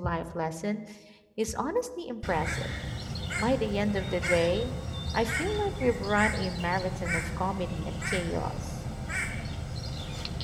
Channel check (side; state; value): both; identical; correlation 1.00